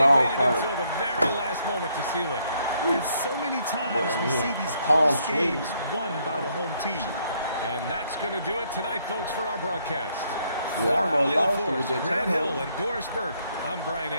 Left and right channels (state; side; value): inverted; both; correlation -0.71